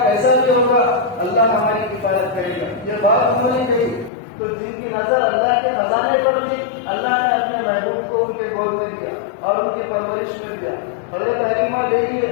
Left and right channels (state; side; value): drops out; right; at 4.1 s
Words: کیسا بھی ہوگا، اللہ ہماری حفاظت کرے گا، یہ بات انہوں نے کہی۔ تو جن کی نظر اللہ کے خزانے پر تھی، اللہ نے اپنے محبوب کو ان کے گود میں دیا اور ان کی پرورش میں دیا۔ حضرت حلیمہ